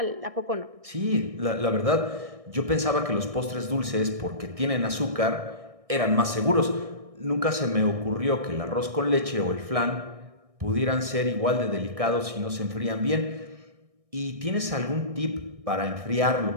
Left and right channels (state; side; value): late; left; 1.6 ms